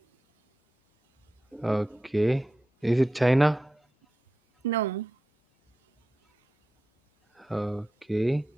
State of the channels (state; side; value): normal; both; correlation 0.91